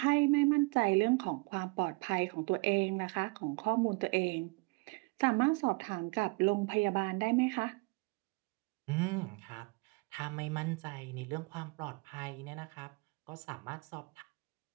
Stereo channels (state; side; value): quieter; left; 28.9 dB